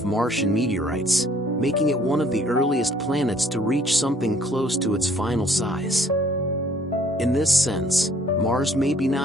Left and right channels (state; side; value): normal; both; correlation 0.59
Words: Martian meteorites, making it one of the earliest planets to reach something close to its final size. In this sense, Mars may be